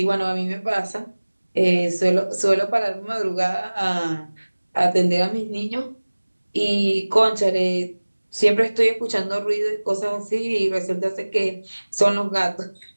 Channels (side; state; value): both; inverted; correlation -1.00